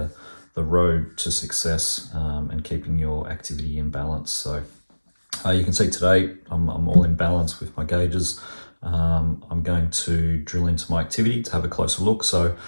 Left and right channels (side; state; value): both; inverted; correlation -1.00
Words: road to success and keeping your activity in balance. So you can see today I'm all in balance with my gauges. I'm going to drill into my activity to have a closer look. So